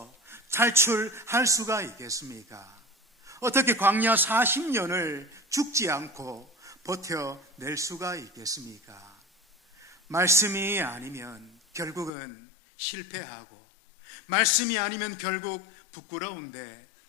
탈출할 수가 있겠습니까? 어떻게 광야 40년을 죽지 않고 버텨낼 수가 있겠습니까? 말씀이 아니면 결국은 실패하고, 말씀이 아니면 결국 부끄러운데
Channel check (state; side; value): drops out; right; at 12.1 s